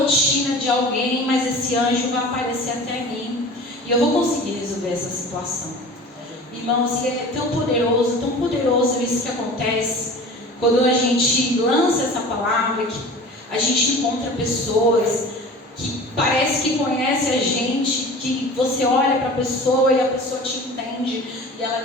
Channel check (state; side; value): normal; both; correlation 0.39